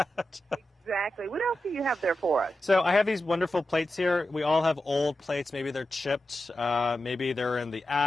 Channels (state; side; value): normal; both; correlation 0.91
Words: Exactly. What else do you have there for us? So I have these wonderful plates here. We all have old plates. Maybe they're chipped. Maybe they're in the